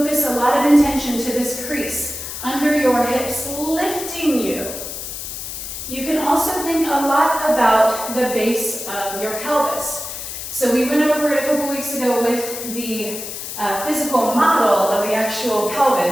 a lot of intention to this crease under your hips, lifting you. You can also think a lot about the base of your pelvis. So we went over it a couple weeks ago with the physical model of the actual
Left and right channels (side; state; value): left; noise; hiss, 8 dB below the sound